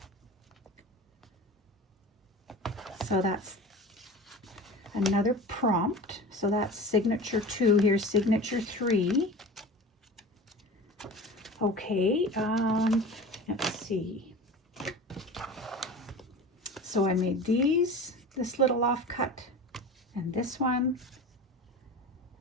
So that's another prompt. So that's signature 2. Here's signature 3. Okay, let's see. So I made this little offcut, and this one,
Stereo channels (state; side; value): normal; both; correlation 0.35